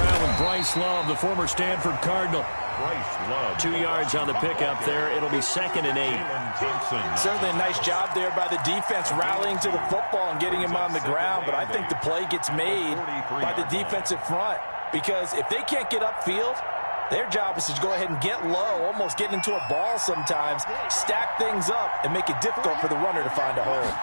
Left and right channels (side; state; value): both; inverted; correlation -1.00